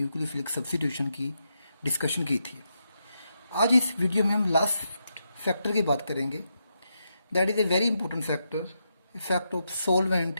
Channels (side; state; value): both; inverted; correlation -0.83